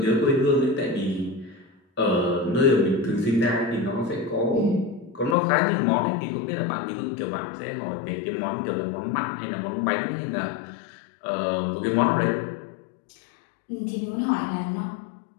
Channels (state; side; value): drops out; right; at 5.4 s